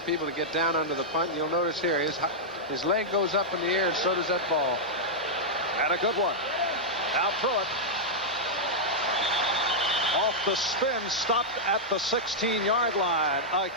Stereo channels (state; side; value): normal; both; correlation -0.07